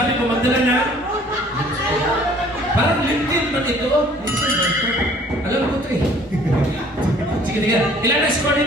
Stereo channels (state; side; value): normal; both; correlation 0.54